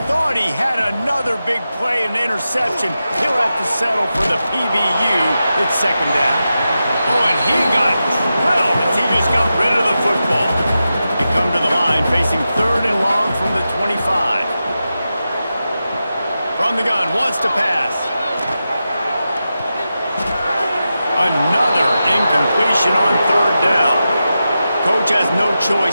Thought he had another big play and interception. He'll have to settle for the PBU. It's second down. Oh, and he got drilled as he just got rid of the football. They come to the line facing third and long from the 25. From the gun, wants to pass. Another incompletion on third down. Coach has no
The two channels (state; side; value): inverted; both; correlation -0.91